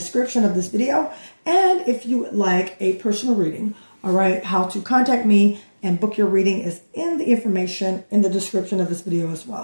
of this video. And if you would like a personal reading, all right, how to contact me and book your reading is in the information in the description of this video as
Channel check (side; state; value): both; inverted; correlation -1.00